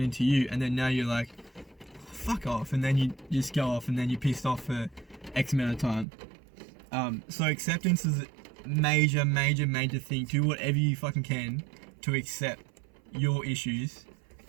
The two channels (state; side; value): drops out; left; at 6.1 s